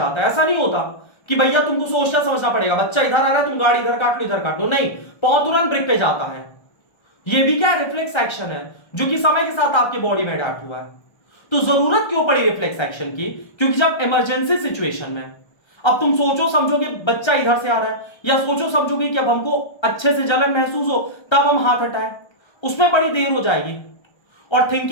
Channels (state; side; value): late; right; 1.3 ms